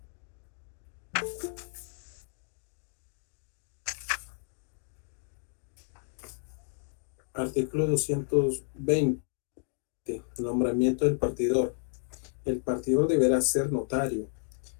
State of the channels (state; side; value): silent; right; digital silence